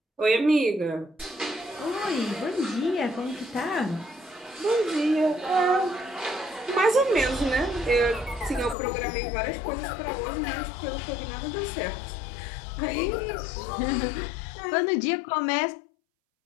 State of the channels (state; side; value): drops out; right; at 8.8 s